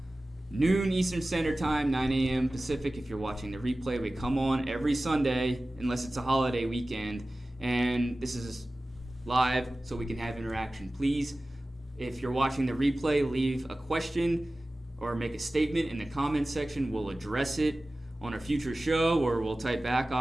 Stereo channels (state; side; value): normal; both; correlation 0.96